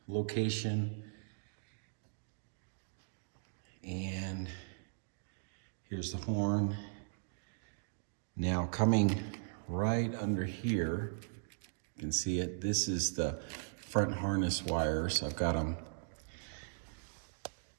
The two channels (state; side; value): silent; left; digital silence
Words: location. And here's the horn. Now coming right under here, you can see it. This is the front harness wires. I've got them